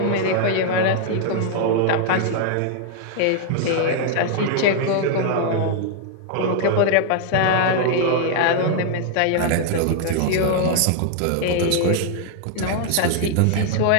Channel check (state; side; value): different; both; correlation 0.00